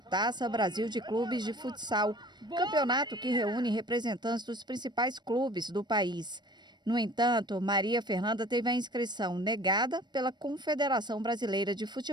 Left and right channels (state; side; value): late; left; 0.21 ms